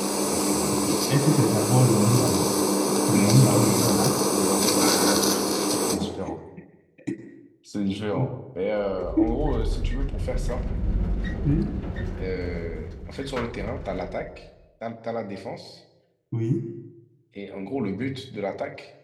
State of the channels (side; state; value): both; identical; correlation 1.00